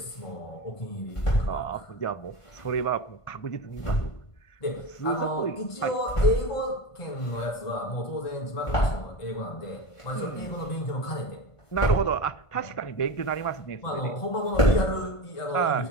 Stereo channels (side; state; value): right; late; 1.5 ms